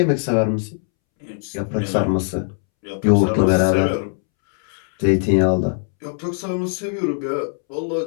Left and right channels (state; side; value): silent; right; 66 dB below the other